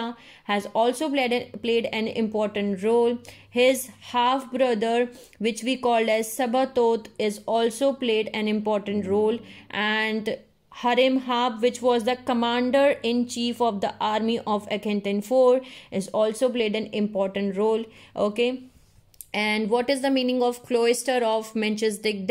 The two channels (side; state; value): both; identical; correlation 1.00